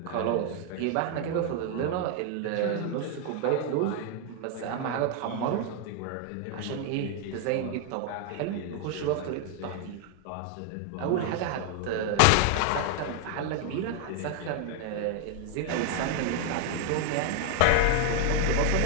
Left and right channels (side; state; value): both; different; correlation 0.01